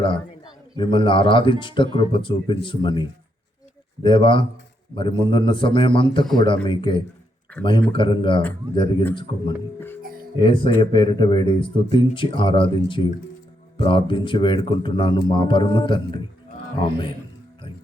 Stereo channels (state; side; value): normal; both; correlation 0.78